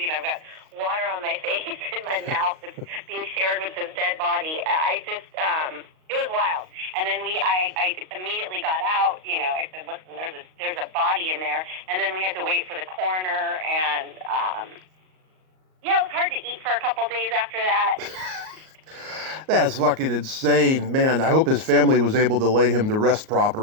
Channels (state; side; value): late; left; 38 ms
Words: got water on my face and my mouth that's being shared with this dead body. It was wild. And then I immediately got out. I said, listen, there's a body in there. And then we had to wait for the coroner. And it was hard to eat for a couple days after that. That's fucking insane, man. I hope his family was able to lay him to rest